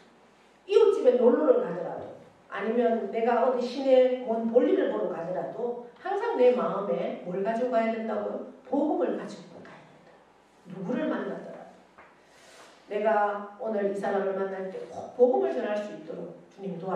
이웃집에 놀러를 가더라도 아니면 내가 어디 시내 뭔 볼일을 보러 가더라도 항상 내 마음에 뭘 가지고 가야 된다고요? 복음을 가지고 가야 된다. 누구를 만나더라도 내가 오늘 이 사람을 만날 때 꼭 복음을 전할 수 있도록 주님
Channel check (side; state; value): both; identical; correlation 1.00